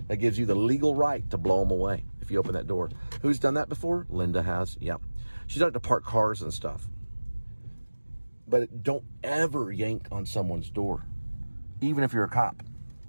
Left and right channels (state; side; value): inverted; both; correlation -1.00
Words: That gives you the legal right to blow them away if you open that door. Who's done that before? Linda has. Yeah. She's done it to park cars and stuff. But don't ever yank on someone's door. Even if you're a cop.